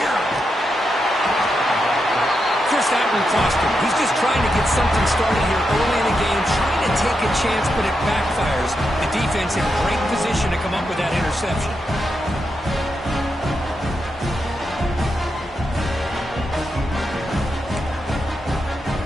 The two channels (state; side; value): normal; both; correlation 0.85